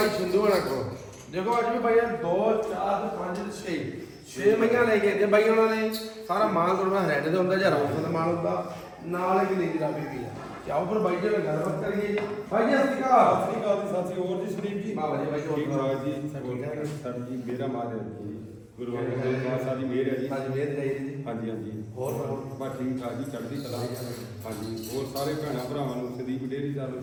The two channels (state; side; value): identical; both; correlation 1.00